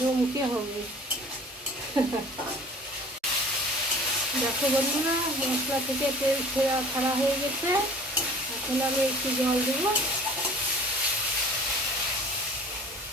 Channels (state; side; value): normal; both; correlation 0.45